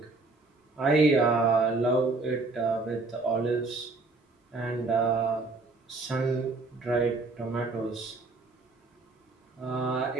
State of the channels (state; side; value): quieter; left; 3.5 dB